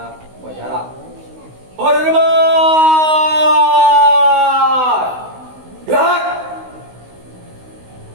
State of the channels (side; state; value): left; late; 16 ms